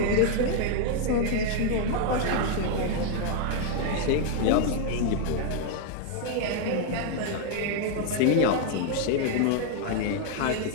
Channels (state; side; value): different; both; correlation 0.00